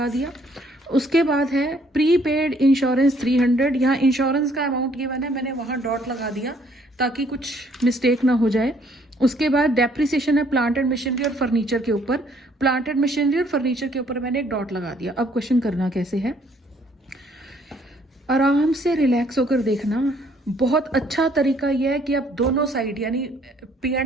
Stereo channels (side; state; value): both; normal; correlation 0.64